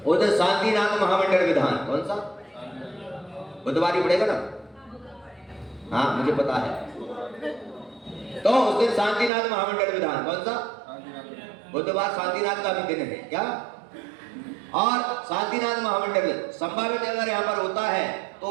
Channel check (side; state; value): left; drops out; at 9.3 s